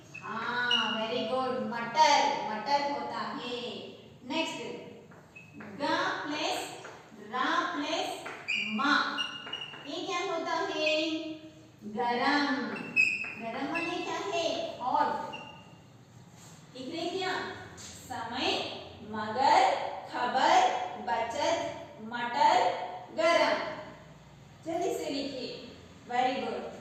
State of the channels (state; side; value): identical; both; correlation 1.00